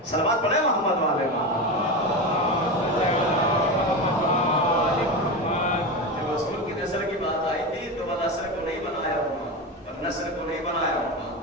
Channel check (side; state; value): both; normal; correlation 0.20